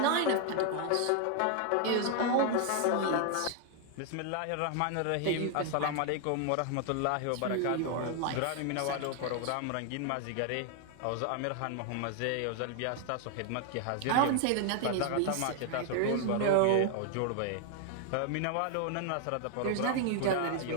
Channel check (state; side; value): different; both; correlation 0.00